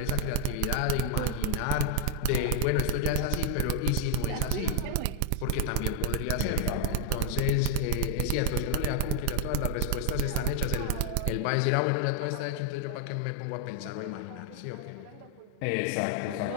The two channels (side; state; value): both; different; correlation 0.00